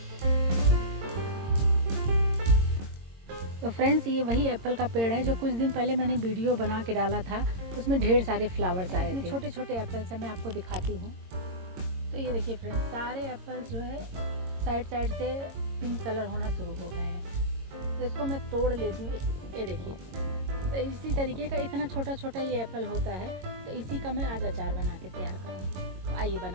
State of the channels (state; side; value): late; left; 22 ms